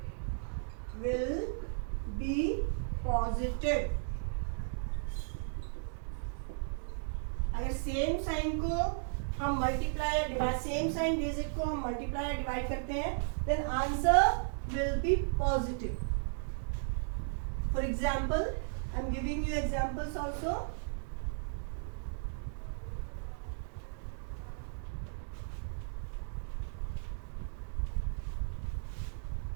positive. अगर same sign को हम multiply या divide, same sign digit को हम मल्टीप्लाई या डिवाइड करते हैं, then answer will be positive. For example, I am giving you examples also.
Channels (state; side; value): silent; left; digital silence